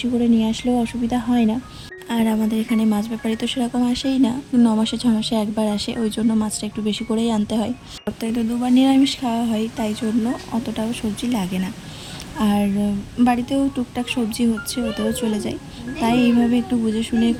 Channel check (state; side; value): identical; both; correlation 1.00